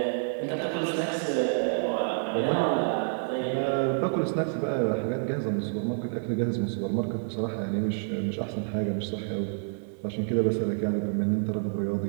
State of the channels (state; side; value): silent; left; 59 dB below the other